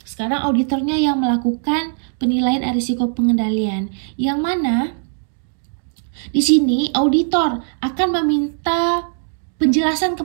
sekarang auditornya yang melakukan penilaian risiko pengendalian, yang mana di sini auditor akan meminta penjelasan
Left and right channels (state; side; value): silent; left; digital silence